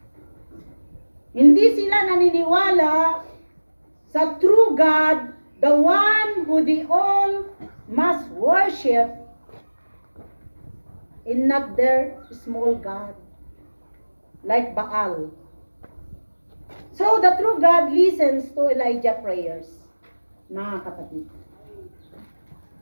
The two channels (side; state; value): both; inverted; correlation -1.00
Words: Hindi sila naniniwala sa true God, the one who they all must worship, and not their small God, like Baal. So the true God listens to Elijah's prayers, mga kapatid.